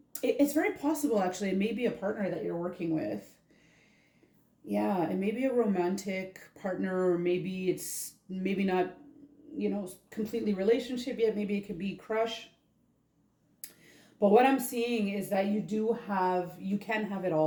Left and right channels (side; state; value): both; identical; correlation 1.00